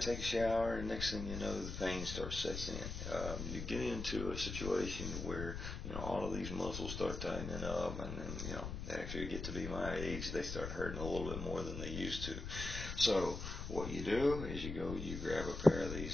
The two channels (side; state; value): left; noise; rumble, 6 dB below the sound